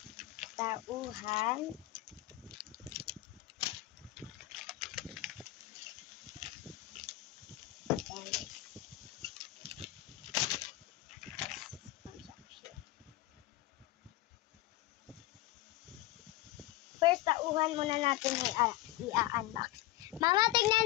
Tauhan. First, tauhan muna natin i-unbox. Mama,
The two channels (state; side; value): quieter; right; 17.6 dB